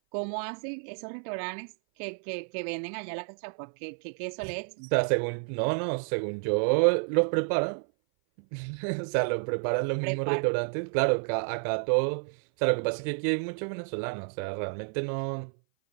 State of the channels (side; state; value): left; silent; 57 dB below the other